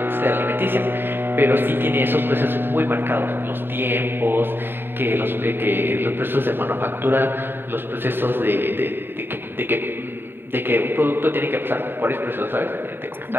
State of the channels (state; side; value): late; left; 0.10 ms